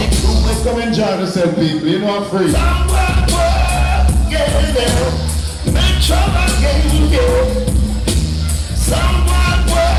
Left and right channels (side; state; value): both; identical; correlation 1.00